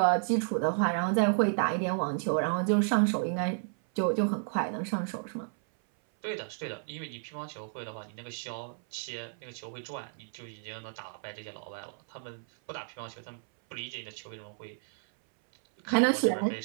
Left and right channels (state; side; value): silent; left; 57 dB below the other